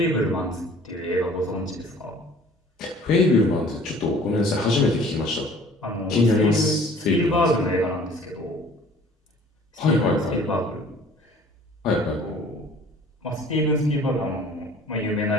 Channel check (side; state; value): both; normal; correlation 0.51